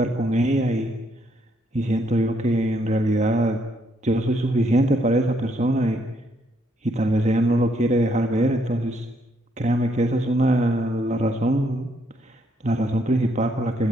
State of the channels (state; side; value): normal; both; correlation 0.72